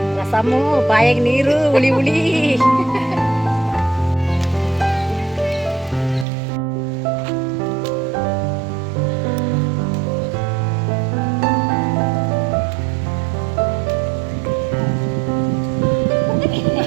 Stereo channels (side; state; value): left; drops out; at 6.2 s